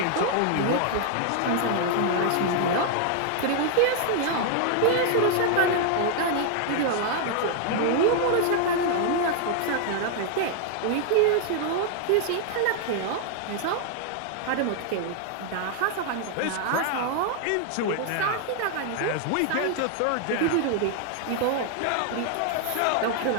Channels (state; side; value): different; both; correlation 0.00